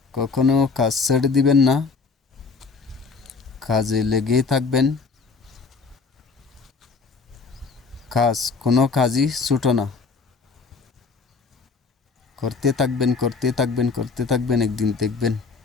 কখনো কাজ ছেড়ে দিবেন না। কাজে লেগেই থাকবেন। কোনো কাজই ছোটো না। করতে থাকবেন, করতে থাকবেন, করতে থাকবেন, একদিন দেখবেন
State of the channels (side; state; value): right; quieter; 4.6 dB